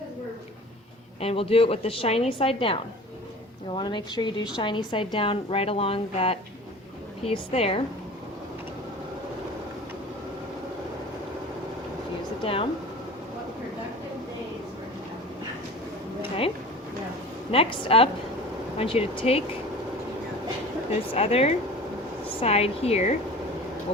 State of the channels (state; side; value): normal; both; correlation 0.40